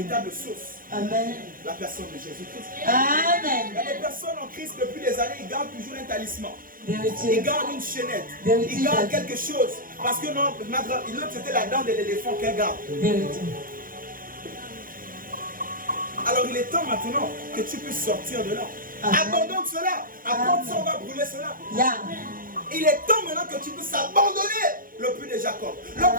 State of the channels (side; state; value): left; late; 0.41 ms